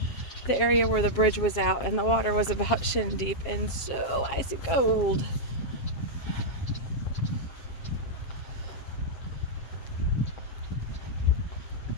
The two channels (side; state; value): right; late; 7.4 ms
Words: the area where the bridge was out and the water was about shin deep and so icy cold.